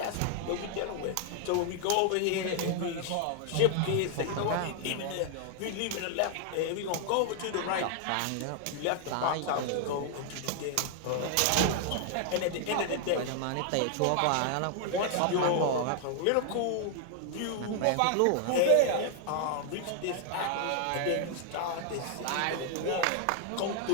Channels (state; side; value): different; both; correlation 0.00